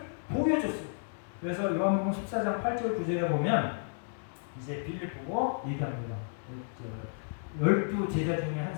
보여줬어요. 그래서 요한복음 14장 8절 9절에 보면 이제 빌립 보고 얘기합니다. 12 제자 중에 한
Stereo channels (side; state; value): right; silent; digital silence